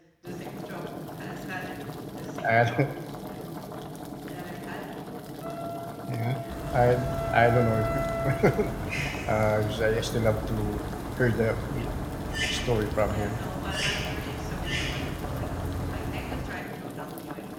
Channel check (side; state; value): both; identical; correlation 1.00